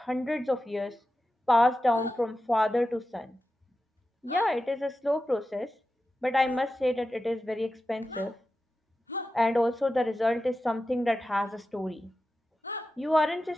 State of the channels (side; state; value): both; normal; correlation 0.92